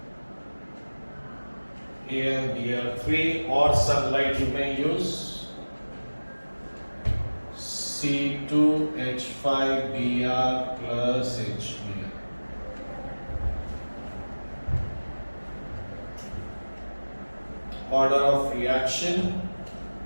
AlBr3 or sunlight you may use. C2H5Br plus HBr. Order of reaction.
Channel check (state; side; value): inverted; both; correlation -1.00